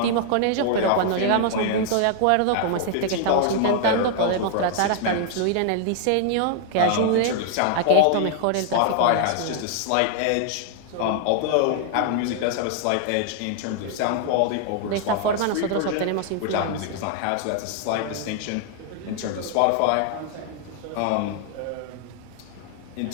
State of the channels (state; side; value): different; both; correlation 0.00